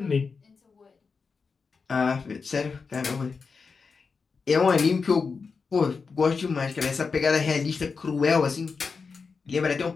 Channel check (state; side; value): quieter; right; 5.0 dB